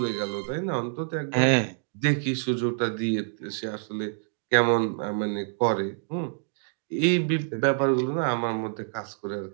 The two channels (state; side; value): silent; left; digital silence